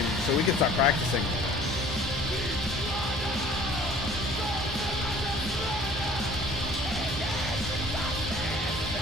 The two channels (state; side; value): normal; both; correlation 0.51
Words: so we can start practicing.